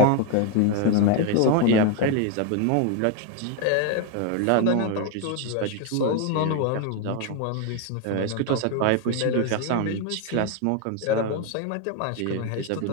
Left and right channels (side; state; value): both; different; correlation 0.01